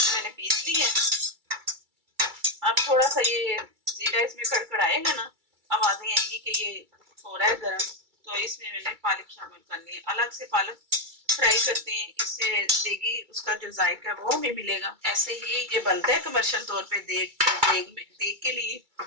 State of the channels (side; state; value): left; late; 2.3 ms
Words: मैंने पीस ली है। अब थोड़ा सा ये जीरा इसमें कड़कड़ाएगा ना, आवाजें आएंगी कि ये हो रहा है गर्म, तो इसमें मैंने पालक शामिल करनी है। अलग से पालक फ्राई करते हैं, इससे देगी उसका जो जायका है वो हमें मिलेगा। ऐसे ही ये बनता है कमर्शियल तौर पे देग के लिए।